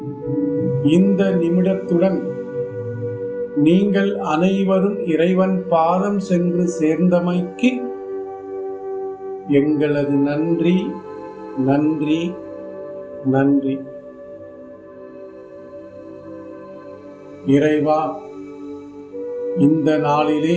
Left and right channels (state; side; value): identical; both; correlation 1.00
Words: இந்த நிமிடத்துடன் நீங்கள் அனைவரும் இறைவன் பாதம் சென்று சேர்ந்தமைக்கு எங்களது நன்றி நன்றி நன்றி. இறைவா, இந்த நாளிலே